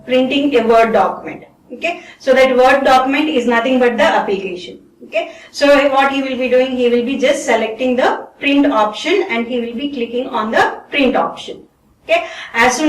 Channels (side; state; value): both; identical; correlation 1.00